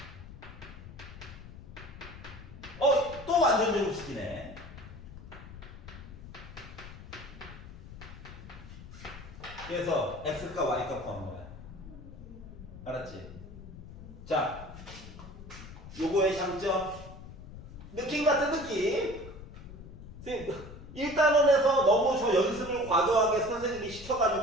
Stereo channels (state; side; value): noise; left; rumble, 14 dB below the sound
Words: 또 완전 제곱식이네. 그래서 x값 y값 구하는 거야. 알았지? 자, 요거의 장점. 느낌 같은 느낌. 1단원에서 너무 저 연습을 과도하게 선생님이